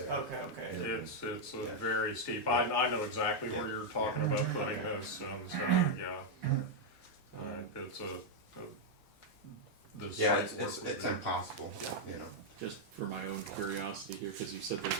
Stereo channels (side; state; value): right; late; 2.1 ms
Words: there. okay. it's a very steep, I know exactly where you're talking about putting this, so, yeah. It's the Yeah, site it's work- impossible, Just for my own curiosity here, because you said there's